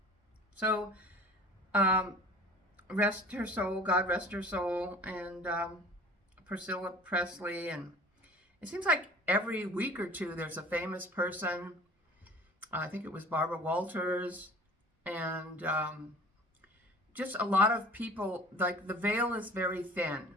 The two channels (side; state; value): both; normal; correlation 0.45